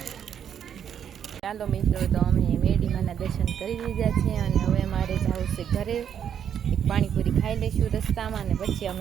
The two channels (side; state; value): left; quieter; 8.7 dB